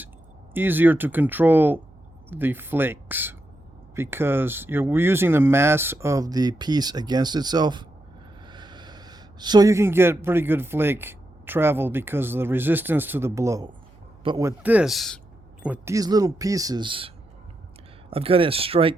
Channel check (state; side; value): noise; right; hum, 27 dB below the sound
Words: easier to control the flakes because we're using the mass of the piece against itself. So you can get pretty good flake travel because of the resistance to the blow. But with these little pieces, I've got to